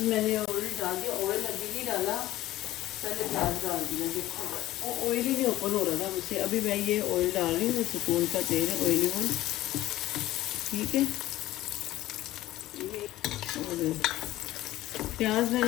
मैंने ऑयल डाल दिया, ऑयल अभी नहीं डाला, पहले प्याज डाल दिया। देखो वो ऑयल ही नहीं ओपन हो रहा था मुझसे। अभी मैं ये ऑयल डाल रही हूँ, सुकून का तेल है, ऑयली ऑयल, ठीक है। और प्याज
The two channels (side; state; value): right; quieter; 15.6 dB